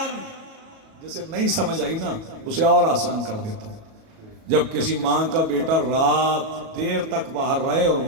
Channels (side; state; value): left; late; 37 ms